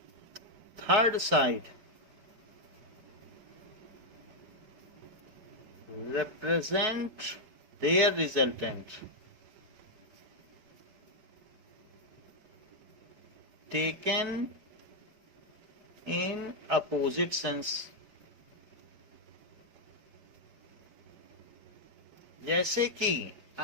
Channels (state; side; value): late; left; 5.0 ms